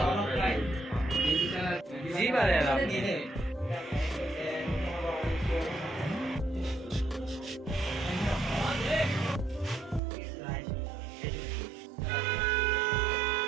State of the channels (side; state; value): left; drops out; at 10.0 s